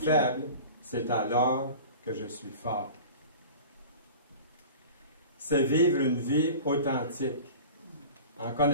c'est alors que je suis fort. C'est vivre une vie authentique, en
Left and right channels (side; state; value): both; inverted; correlation -0.38